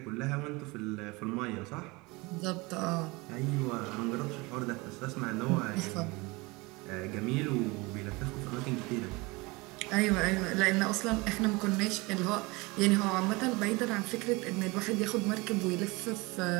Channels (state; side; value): quieter; left; 24.7 dB